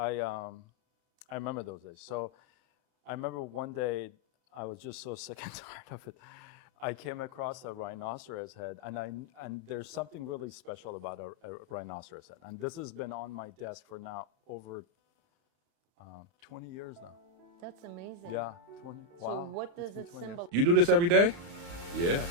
remember those days. So I remember one day I was just so sick and tired of it. I came across a rhinoceros head, and there's something really special about a rhinoceros head. And this has been on my desk for now over 20 years now. That's amazing. Yeah, 20. Wow. So what It's does been it 20 years. symbolize? You do this every day? Yeah.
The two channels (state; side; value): late; left; 35 ms